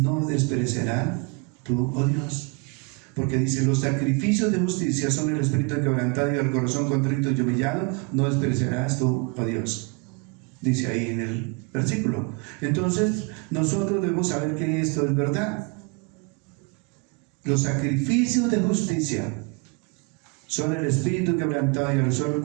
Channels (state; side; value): quieter; left; 31.3 dB